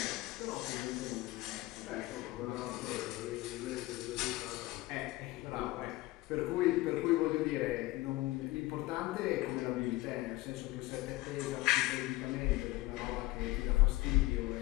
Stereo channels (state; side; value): quieter; right; 19.2 dB